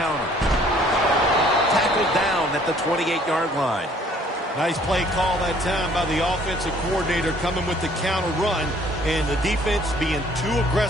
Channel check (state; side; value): normal; both; correlation 0.59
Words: Tackled down at the 28-yard line. Nice play call that time by the offensive coordinator, coming with the counter run, and the defense being too